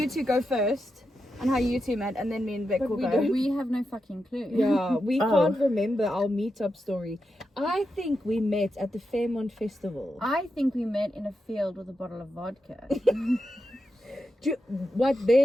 two go first on how you two met, and then me and Vic But will we go. don't- We have no fucking clue. Yeah, we Oh. can't remember our meetup story. I think we met at the Fairmont Festival. I think we met in a field with a bottle of vodka. What,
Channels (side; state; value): both; normal; correlation 0.87